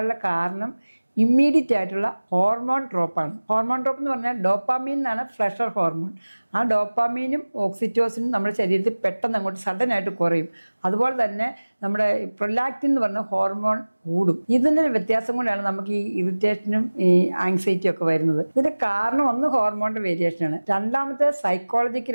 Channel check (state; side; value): inverted; both; correlation -1.00